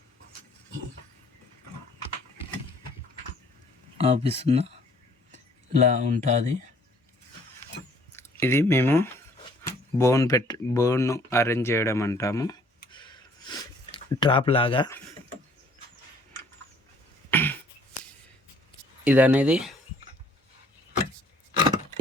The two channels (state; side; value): normal; both; correlation 0.59